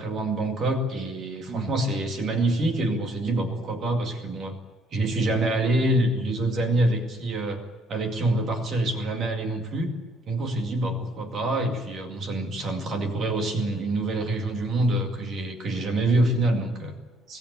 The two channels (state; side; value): normal; both; correlation 0.65